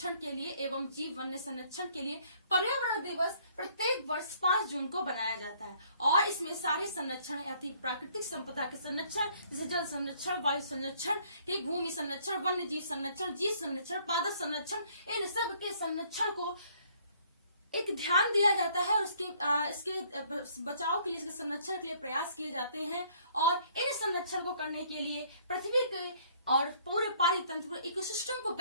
के लिए एवं जीव वन्य संरक्षण के लिए पर्यावरण दिवस प्रत्येक वर्ष 5 जून को बनाया जाता है। और इसमें सारे संरक्षण यानी प्राकृतिक संपदा के संरक्षण जैसे जल संरक्षण, वायु संरक्षण, भूमि संरक्षण, वन्य जीव संरक्षण, जीव संरक्षण, पादप संरक्षण, इन सब के संरक्षण को एक ध्यान दिया जाता है और इसके बचाव के लिए, इसके संरक्षण के लिए प्रयास किए जाते हैं। और इन संरक्षण को करने के लिए पृथ्वी के और पूरे पारितंत्र इकोसिस्टम को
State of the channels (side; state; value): both; inverted; correlation -0.62